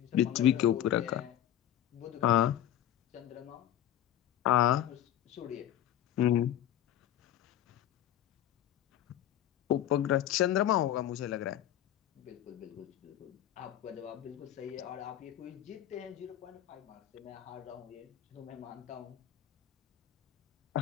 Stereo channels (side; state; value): right; quieter; 11.7 dB